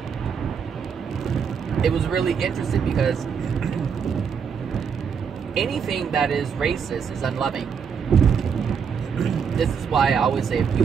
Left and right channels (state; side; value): quieter; left; 6.7 dB